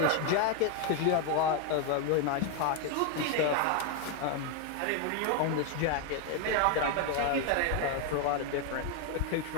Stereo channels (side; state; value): both; different; correlation 0.01